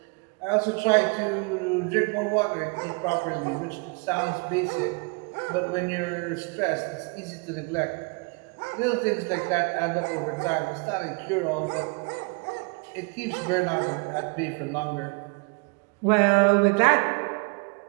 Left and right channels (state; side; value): quieter; left; 31.9 dB